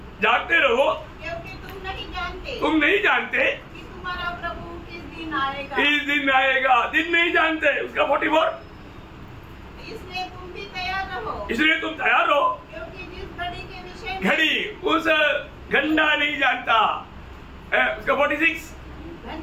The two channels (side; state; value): both; identical; correlation 1.00